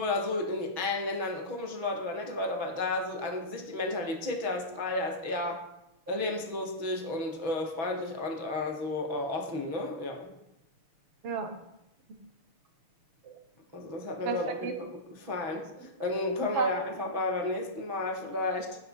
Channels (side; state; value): left; late; 6.2 ms